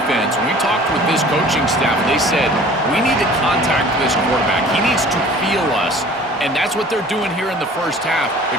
When we talked with this coaching staff, they said, we need to contact this quarterback. He needs to feel us. And that's what they're doing here in the first half.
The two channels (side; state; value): both; normal; correlation 0.47